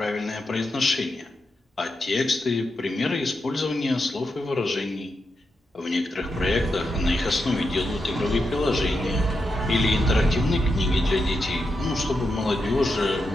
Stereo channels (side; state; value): both; normal; correlation 0.86